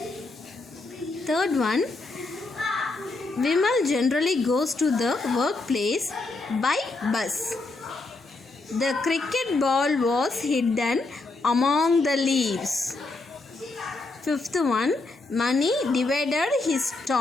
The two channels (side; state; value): right; quieter; 3.3 dB